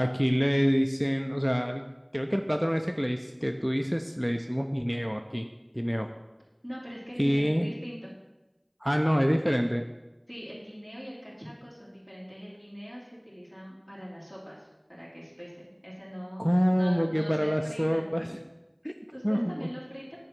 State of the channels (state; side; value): identical; both; correlation 1.00